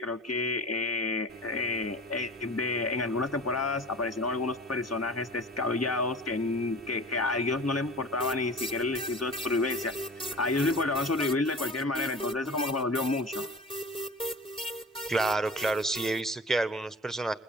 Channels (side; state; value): both; normal; correlation 0.39